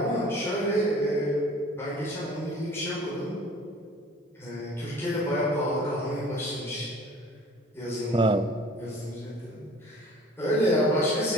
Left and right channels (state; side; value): normal; both; correlation 0.47